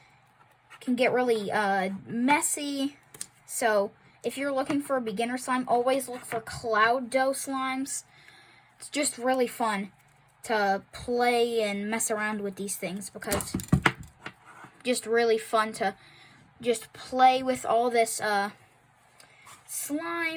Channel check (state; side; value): identical; both; correlation 1.00